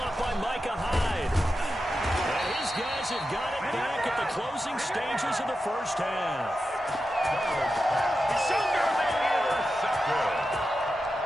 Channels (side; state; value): both; normal; correlation 0.90